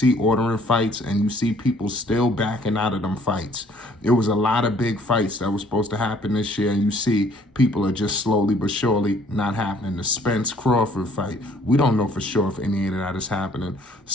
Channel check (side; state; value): both; normal; correlation 0.60